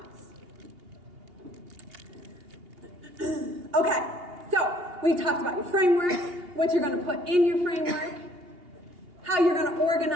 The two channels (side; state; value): left; late; 2.8 ms